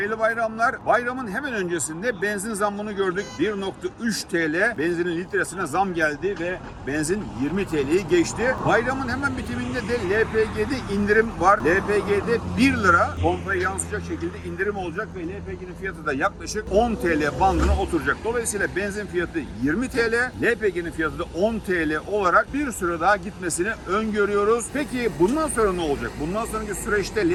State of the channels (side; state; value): both; identical; correlation 1.00